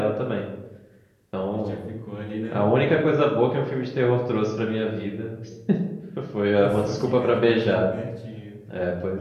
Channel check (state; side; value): identical; both; correlation 1.00